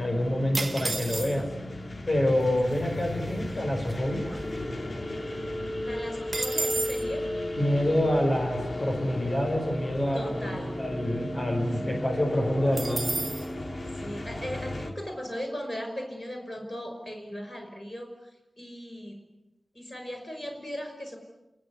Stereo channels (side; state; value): both; normal; correlation 0.96